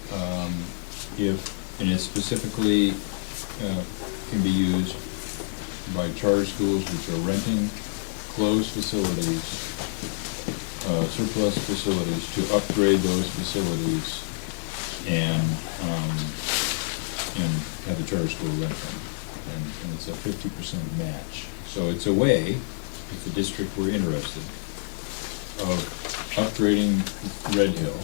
and it specifically can be used by charter schools which are renting closed facilities, surplus facilities, to upgrade those facilities and have the charter school rent them. And it's a 50% match. So it's a way, if the district were interested, of upgrading Red Hill,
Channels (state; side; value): silent; right; digital silence